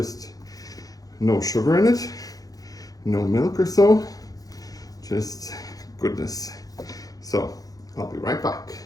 no sugar in it, no milk or so, just goodness. So I'll be right back.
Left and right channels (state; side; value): late; right; 0.18 ms